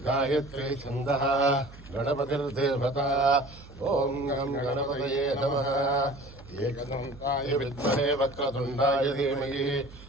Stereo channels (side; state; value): right; noise; hum, 19 dB below the sound